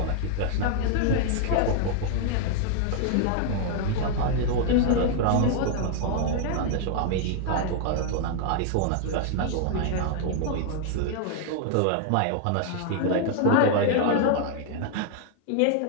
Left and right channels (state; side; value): different; both; correlation 0.00